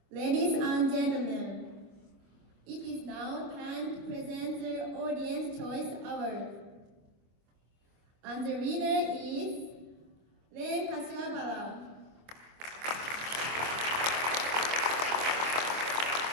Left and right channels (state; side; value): late; left; 25 ms